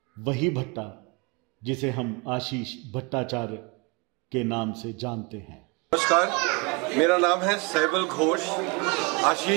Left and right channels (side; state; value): left; quieter; 29.8 dB